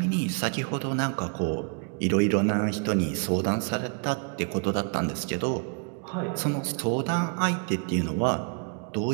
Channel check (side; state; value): left; quieter; 37.8 dB